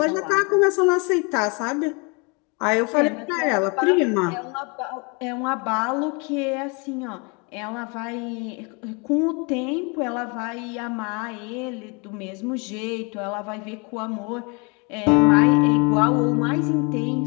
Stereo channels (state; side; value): quieter; right; 31.4 dB